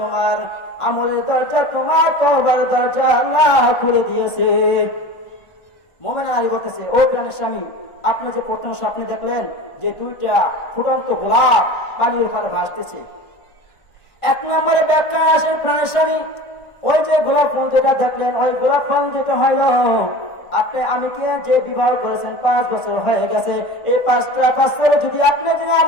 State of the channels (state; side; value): late; right; 1.5 ms